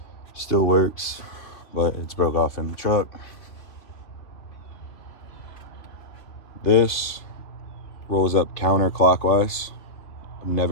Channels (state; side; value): late; right; 2.9 ms